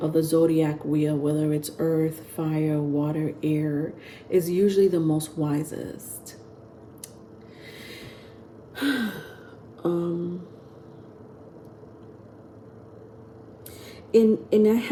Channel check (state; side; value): identical; both; correlation 1.00